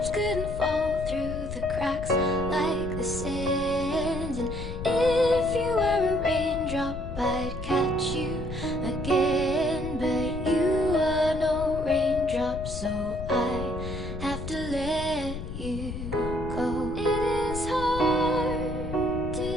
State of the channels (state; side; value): noise; left; rumble, 7 dB below the sound